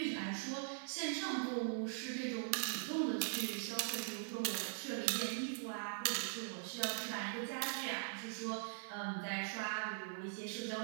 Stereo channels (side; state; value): left; silent; digital silence